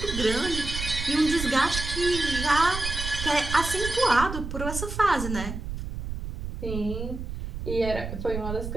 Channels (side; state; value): right; noise; rumble, 6 dB below the sound